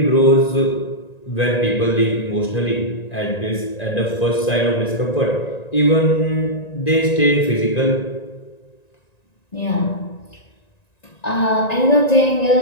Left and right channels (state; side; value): late; right; 1.9 ms